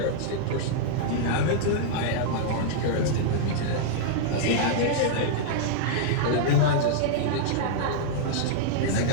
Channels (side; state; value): both; different; correlation -0.02